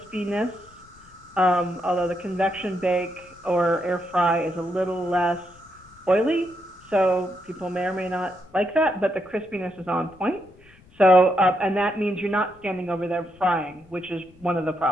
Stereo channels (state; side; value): noise; left; rumble, 27 dB below the sound